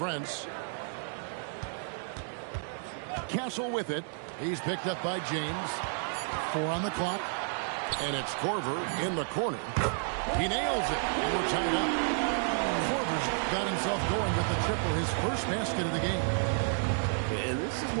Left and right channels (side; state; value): left; silent; 57 dB below the other